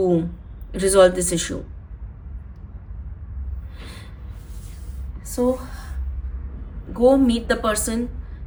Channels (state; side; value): identical; both; correlation 1.00